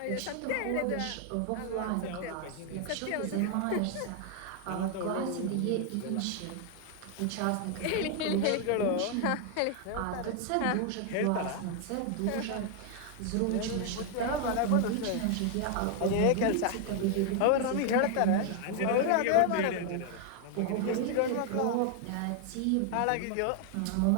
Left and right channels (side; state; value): both; different; correlation 0.00